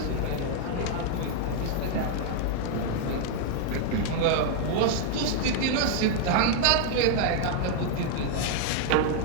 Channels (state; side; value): different; both; correlation -0.01